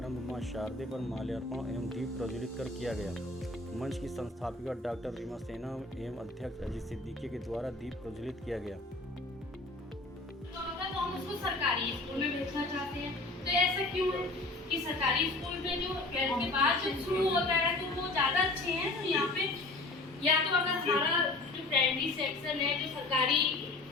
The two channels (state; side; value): quieter; right; 3.0 dB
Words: मां शारदे पर माल्यार्पण एवं दीप प्रज्वलित कर किया गया। मंच की संस्थापिका डॉक्टर रीमा सेना एवं अध्यक्ष अजीत सिद्दीकी के द्वारा दीप प्रज्वलित किया गया। तो हम उसको सरकारी स्कूल में भेजना चाहते हैं, तो ऐसा क्यों है कि सरकारी स्कूल में जो 12th के बाद जो शुरू होता है तो वो ज़्यादा अच्छे हैं। तो यहाँ पे या तो अगर हमारा जो प्राइमरी सेक्शन है जो सरकारी